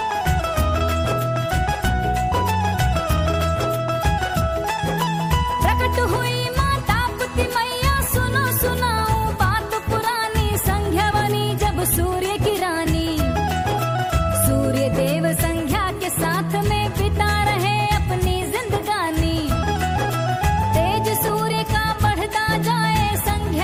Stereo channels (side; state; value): both; identical; correlation 1.00